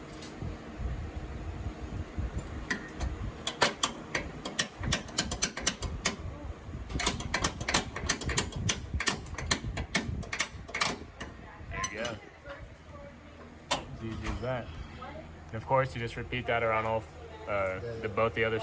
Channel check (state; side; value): identical; both; correlation 1.00